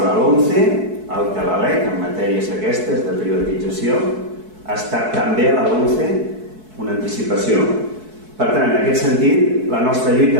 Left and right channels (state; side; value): late; left; 4.6 ms